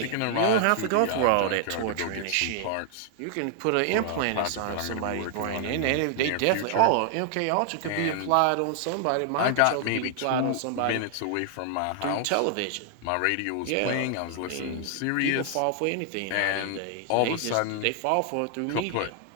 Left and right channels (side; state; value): both; different; correlation 0.00